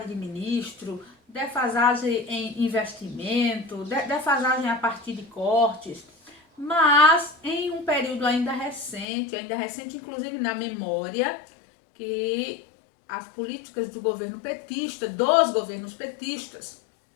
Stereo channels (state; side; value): drops out; right; at 9.1 s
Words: de ministro, defasagem em investimento, defasagem a partir de cortes, mas em um período ainda recente inclusive na memória, que as políticas do governo petista, dos governos petistas,